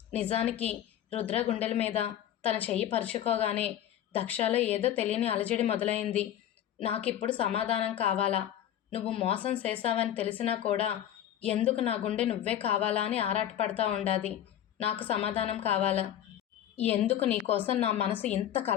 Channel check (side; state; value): right; quieter; 11.1 dB